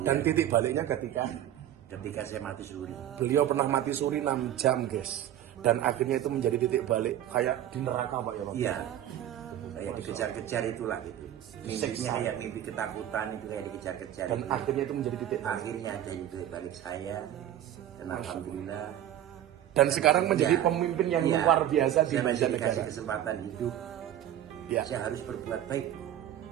Dan titik baliknya Ketika saya mati suri. beliau pernah mati suri 6 jam guys. Dan akhirnya itu menjadi titik balik kayak di neraka Pak ya Pak? Iya. Saya dikejar-kejar itulah gitu. Mimpinya kayak mimpi ketakutan itu kayak dikejar-kejar. Dan akhirnya itu menjadi titik balik. Akhirnya ada titik balik saya. Dan alhamdulillah. Dan sekarang menjadi Ya, pemimpin yang ya, luar biasa di saya masih Banjarnegara. dikasih kesempatan hidup. Ya. Saya harus berbuat baik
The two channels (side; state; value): left; quieter; 11.7 dB